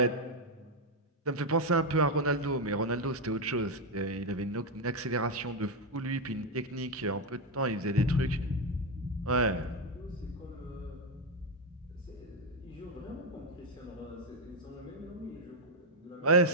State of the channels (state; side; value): normal; both; correlation 0.05